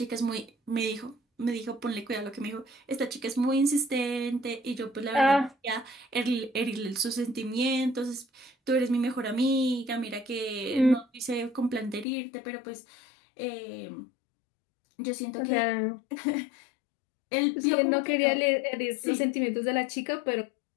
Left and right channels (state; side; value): drops out; right; at 12.1 s